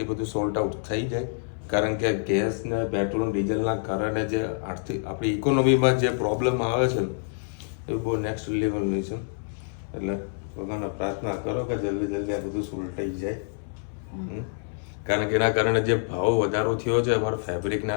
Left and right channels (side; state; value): right; silent; 59 dB below the other